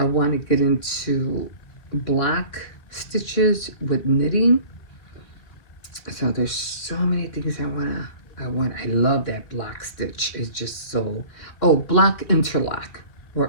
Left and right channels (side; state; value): right; late; 3.6 ms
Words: want to get into block stitches with knitting. So there's so many things I love that block stitch. It's just so, block interlock